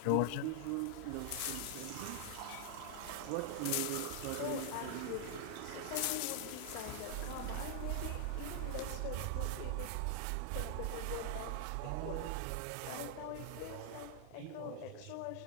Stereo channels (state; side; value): different; both; correlation 0.00